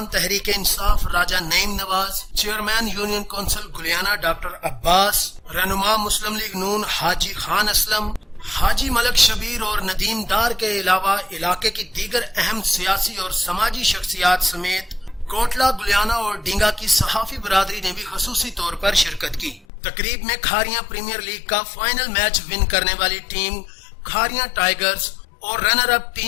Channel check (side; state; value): right; drops out; at 19.7 s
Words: تحریک انصاف راجہ نعیم نواز، چیئرمین یونین کونسل گلیانہ ڈاکٹر عباس، رہنما مسلم لیگ نون حاجی خان اسلم، حاجی ملک شبیر اور ندیم دار کے علاوہ علاقے کی دیگر اہم سیاسی اور سماجی شخصیات سمیت کوٹلہ، گلیانہ اور ڈینگا کی صحافی برادری نے بھی خصوصی طور پر شرکت کی۔ تقریب میں کھاریاں پریمیئر لیگ کا فائنل میچ ون کرنے والی ٹیم کھاریاں ٹائیگرز اور runner up